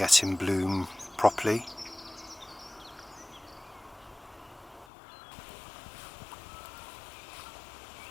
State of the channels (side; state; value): right; drops out; at 4.9 s